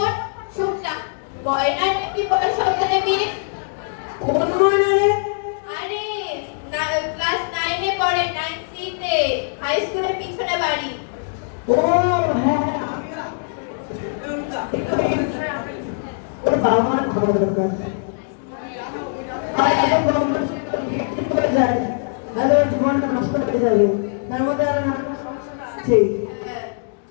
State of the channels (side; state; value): right; silent; digital silence